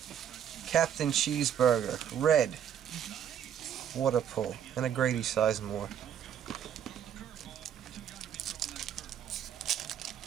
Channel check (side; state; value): left; quieter; 9.2 dB